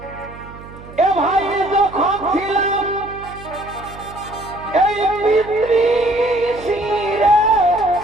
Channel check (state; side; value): noise; right; hum, 17 dB below the sound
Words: এ ভাই যখন ছিলাম এই পিতৃশিরে